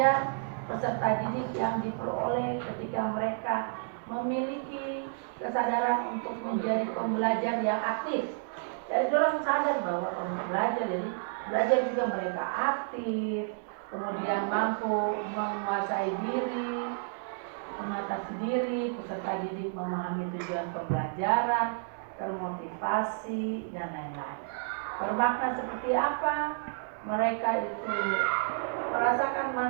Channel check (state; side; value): silent; left; digital silence